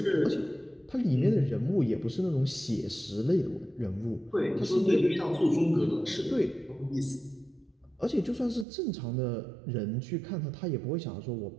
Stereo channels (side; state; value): left; drops out; at 8.7 s